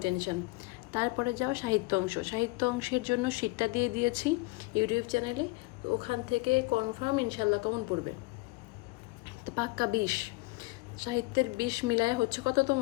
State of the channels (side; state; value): right; quieter; 23.1 dB